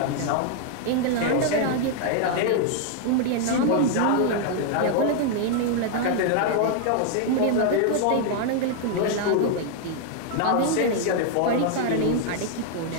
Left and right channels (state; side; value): different; both; correlation 0.00